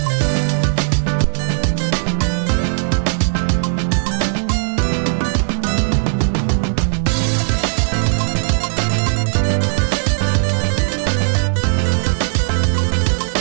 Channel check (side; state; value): left; silent; digital silence